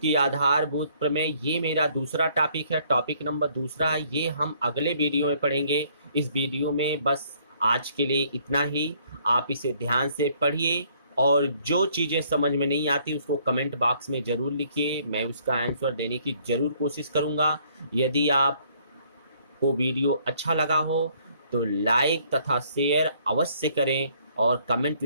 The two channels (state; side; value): inverted; both; correlation -0.64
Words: आधारभूत प्रमेय। ये मेरा दूसरा टॉपिक है, टॉपिक नंबर दूसरा है, ये हम अगले वीडियो में पढ़ेंगे। इस वीडियो में बस आज के लिए इतना ही। आप इसे ध्यान से पढ़िए, और जो चीज़ें समझ में नहीं आती उसको कमेंट बॉक्स में ज़रूर लिखिए, मैं उसका आंसर देने की ज़रूर कोशिश करूँगा। यदि आपको वीडियो अच्छा लगा हो तो लाइक तथा शेयर अवश्य करें, और कमेंट